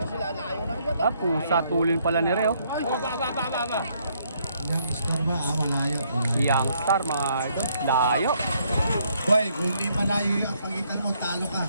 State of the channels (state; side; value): inverted; both; correlation -0.70